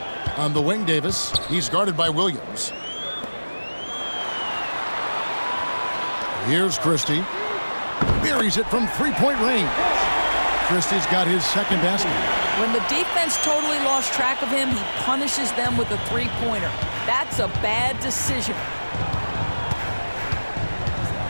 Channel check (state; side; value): inverted; both; correlation -1.00